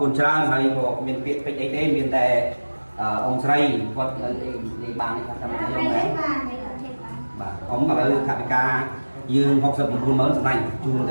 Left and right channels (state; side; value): inverted; both; correlation -1.00